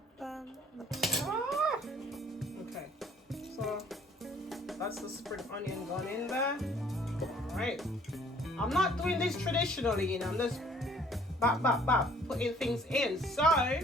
Okay. So that's the spring onion gone in there. Alright. I'm not doing this traditionally, you know, I'm just putting things in. So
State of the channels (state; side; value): normal; both; correlation 0.58